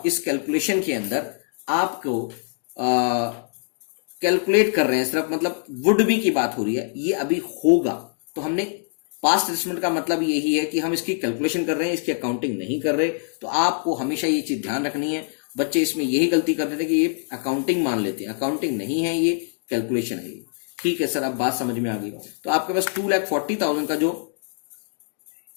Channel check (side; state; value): right; silent; digital silence